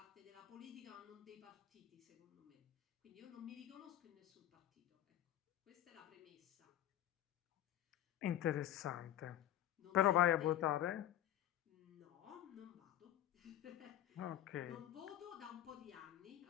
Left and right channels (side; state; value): right; quieter; 12.3 dB